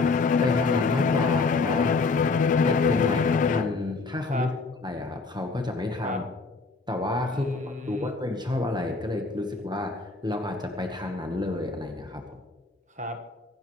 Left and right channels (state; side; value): quieter; right; 4.0 dB